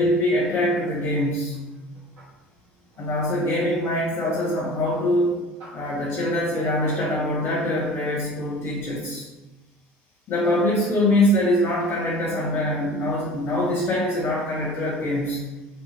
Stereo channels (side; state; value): both; normal; correlation 0.42